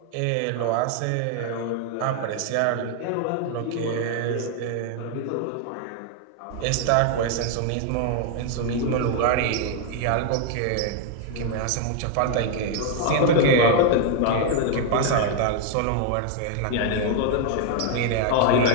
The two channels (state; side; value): different; both; correlation 0.00